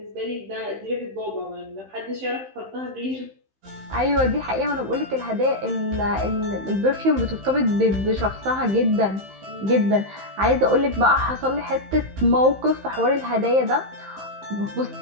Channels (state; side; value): late; left; 15 ms